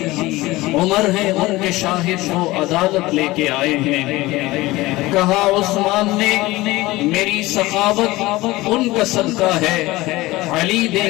عمر ہیں ان کے شاہد وہ عدالت لے کے آئے ہیں۔ کہا عثمان نے میری سخاوت ان کا صدقہ ہے، علی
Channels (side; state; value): right; quieter; 19.4 dB